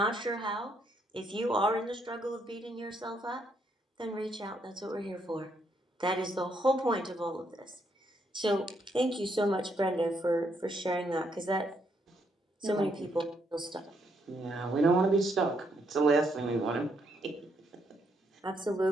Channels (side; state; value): both; normal; correlation 0.74